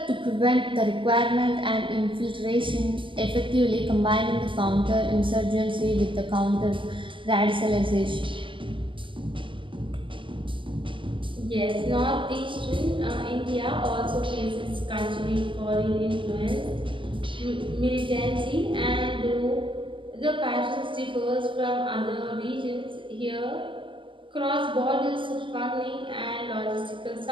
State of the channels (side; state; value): left; late; 0.25 ms